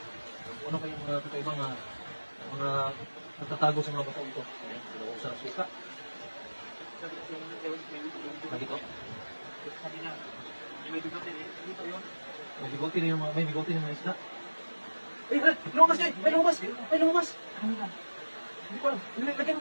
Ano kayong mga kakaibang mga nagtatago sa mga batong ito? Ayan, dalawang sa suka. Dito. May bigote rin yung mga isda. May lumabas dyan! May lumabas! May lumabas! Hindi ko alam. Lagyan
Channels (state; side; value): inverted; both; correlation -1.00